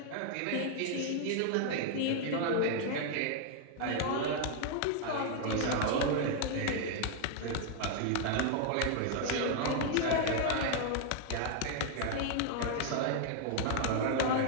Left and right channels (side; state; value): both; different; correlation 0.00